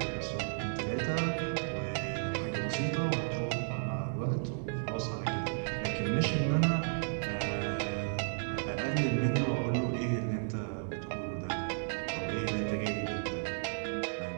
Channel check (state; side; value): silent; left; digital silence